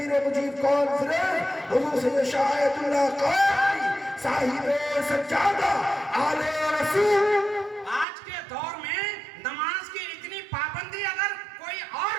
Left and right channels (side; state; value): left; drops out; at 8.1 s